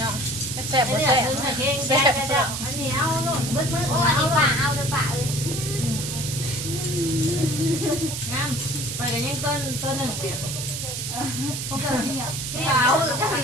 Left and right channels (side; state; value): right; noise; hiss, 5 dB below the sound